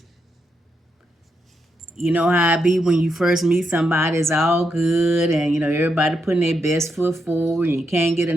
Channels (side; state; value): both; normal; correlation 0.82